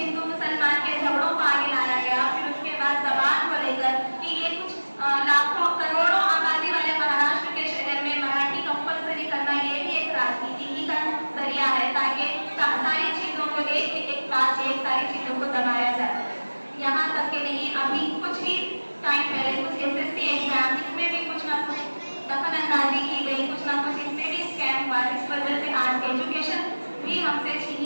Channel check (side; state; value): both; inverted; correlation -1.00